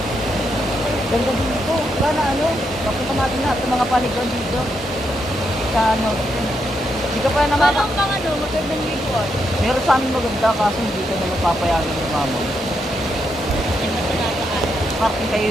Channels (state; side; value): normal; both; correlation 0.80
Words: Ganda dito. Wala na ano. Papunta natin lahat ng mga paliguan dito. Sa ano. Hindi ka pa nakaka... Parang pang ano, magandang liguan. Meron sa amin maganda kaso hindi ka na mapapayagan ng mama. Ay, matanataan. Parking